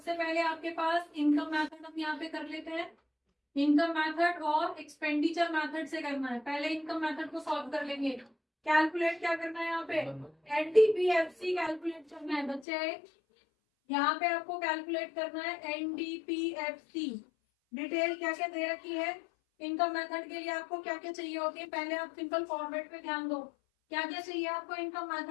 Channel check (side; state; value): right; drops out; at 12.7 s